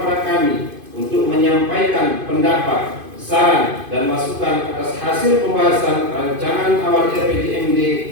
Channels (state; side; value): late; left; 2.5 ms